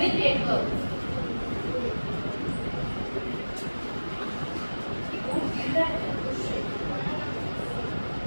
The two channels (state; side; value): inverted; both; correlation -1.00